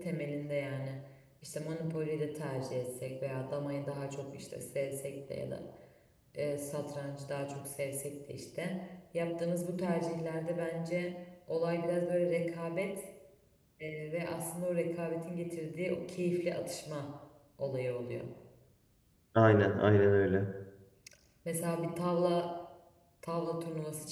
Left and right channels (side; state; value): both; identical; correlation 1.00